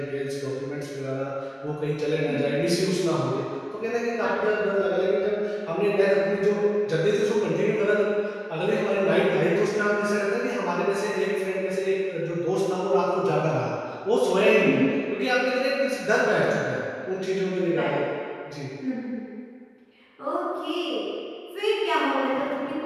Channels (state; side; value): identical; both; correlation 1.00